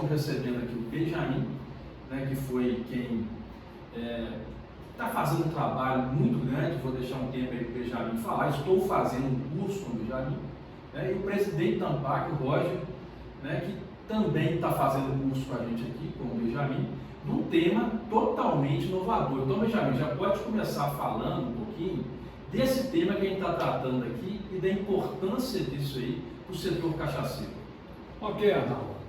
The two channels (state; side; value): identical; both; correlation 1.00